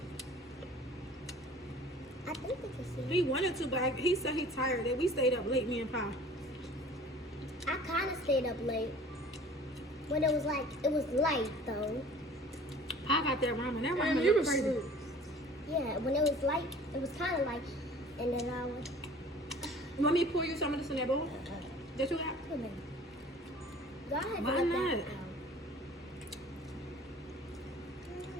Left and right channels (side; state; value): both; normal; correlation 0.47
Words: I think they can see. He wanted to, but he said he tired. That we stayed up late, me and Pa. I kind of stayed up late. When it was light though. I got that ramen. That ramen you was crazy. Yeah, when it was light, it was kind of light. And then I was... You want me to pour you some of this in that bowl? That you got? Come on. Go ahead. Why not?